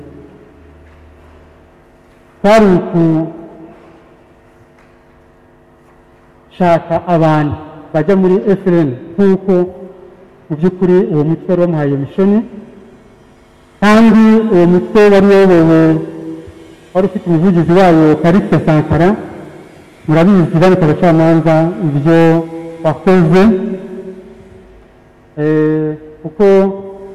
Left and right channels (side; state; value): both; identical; correlation 1.00